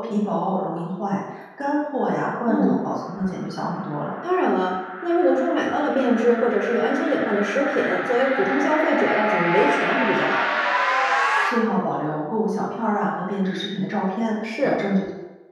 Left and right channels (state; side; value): identical; both; correlation 1.00